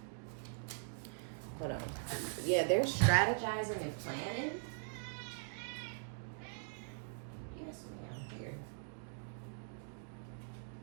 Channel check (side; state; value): left; silent; digital silence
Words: Hold on. Yeah, they're strategizing and planning. Yes, ma'am. Here.